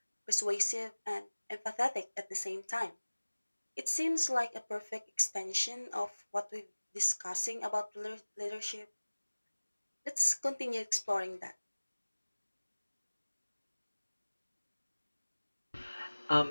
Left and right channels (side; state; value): both; inverted; correlation -1.00